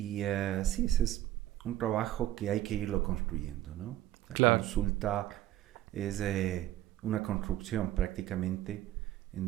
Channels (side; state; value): left; quieter; 14.0 dB